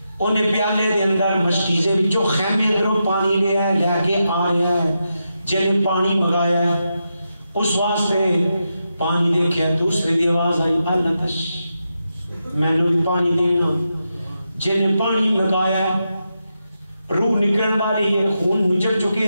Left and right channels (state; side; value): inverted; both; correlation -0.87